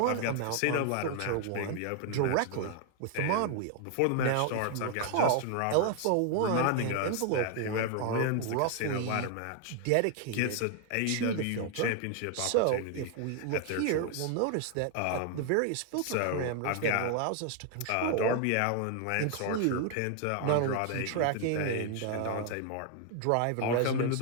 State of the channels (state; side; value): different; both; correlation 0.00